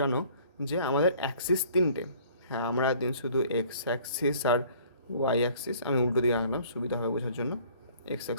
যে আমাদের অ্যাক্সিস 3টে। হ্যাঁ, আমরা দিন শুধু এক্স অ্যাক্সিস আর ওয়াই অ্যাক্সিস, আমি উল্টো দিকে আনলাম সুবিধা হবে বোঝার জন্য, এক্স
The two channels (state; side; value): inverted; both; correlation -0.54